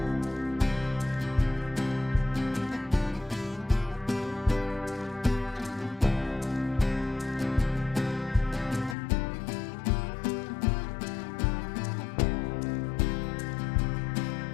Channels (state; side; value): drops out; right; at 9.0 s